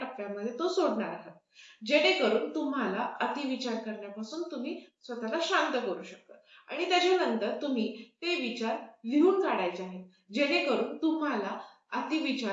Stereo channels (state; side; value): identical; both; correlation 1.00